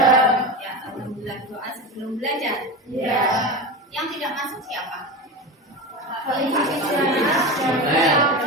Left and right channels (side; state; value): both; normal; correlation 0.24